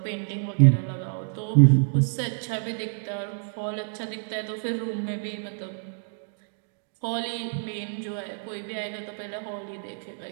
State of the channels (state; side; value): silent; left; digital silence